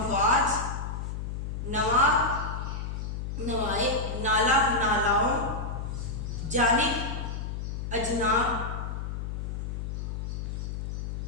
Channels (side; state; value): left; noise; hum, 4 dB below the sound